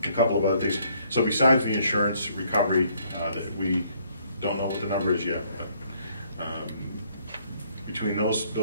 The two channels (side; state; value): both; inverted; correlation -0.65